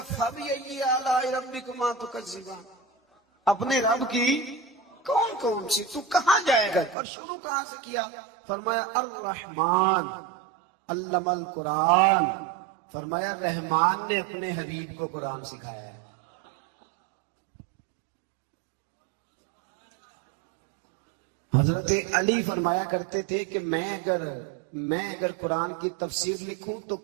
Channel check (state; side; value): drops out; left; at 7.0 s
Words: فَبِأَيِّ آلَاءِ رَبِّكُمَا تُكَذِّبَانِ. اپنے رب کی کون کون سی، تو کہاں جائے گا؟ اور شروع کہاں سے کیا؟ فرمایا الرحمن علم القرآن. فرمایا رحمان نے اپنے حبیب کو قرآن سکھایا ہے. حضرت علی فرمایا کرتے تھے کہ میں اگر قرآن کی تفسیر لکھوں تو